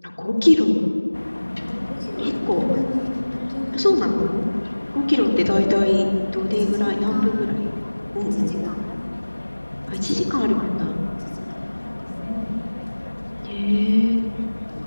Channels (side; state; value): both; inverted; correlation -1.00